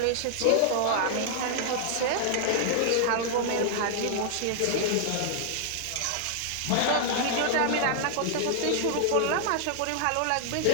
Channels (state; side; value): different; both; correlation 0.00